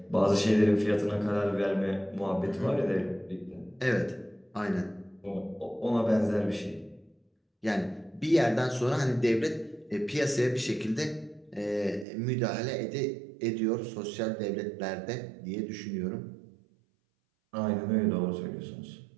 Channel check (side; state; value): left; drops out; at 12.1 s